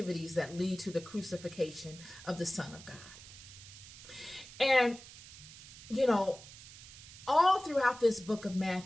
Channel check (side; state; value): right; noise; hiss, 16 dB below the sound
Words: that lead to the crucifixion of the Son of God. And, all throughout this book of